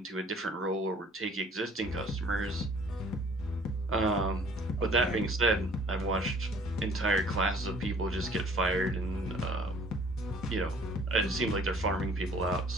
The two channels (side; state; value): both; normal; correlation 0.54